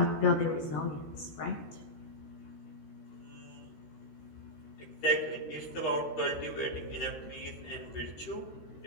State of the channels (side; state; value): right; late; 13 ms